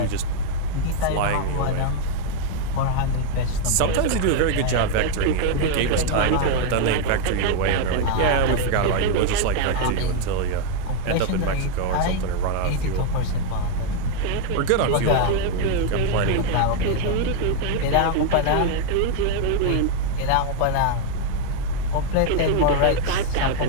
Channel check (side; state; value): both; different; correlation 0.00